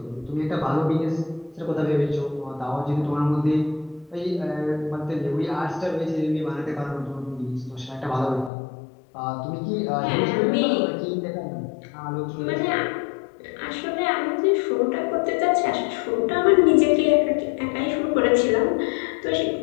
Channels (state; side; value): drops out; right; at 8.5 s